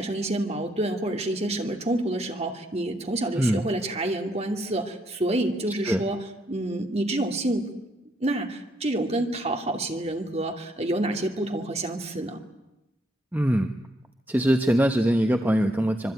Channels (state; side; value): normal; both; correlation 0.74